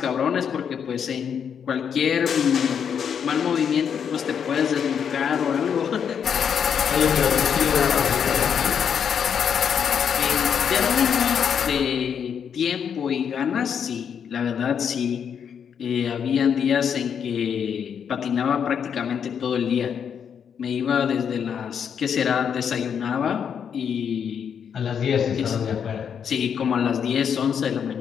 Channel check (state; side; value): quieter; right; 7.6 dB